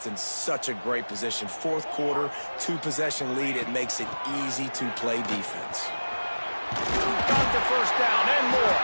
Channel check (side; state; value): both; inverted; correlation -1.00